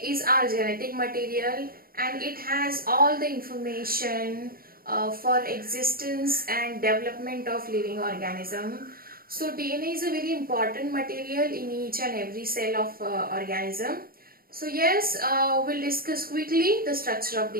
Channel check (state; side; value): late; left; 0.43 ms